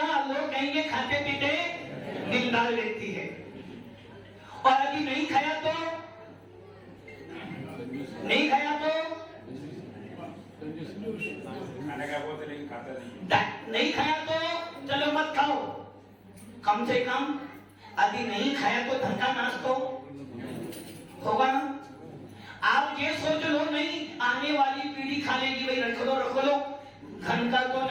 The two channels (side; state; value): both; identical; correlation 1.00